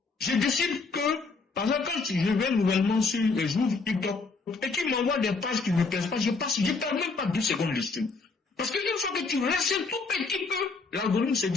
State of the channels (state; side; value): quieter; right; 4.2 dB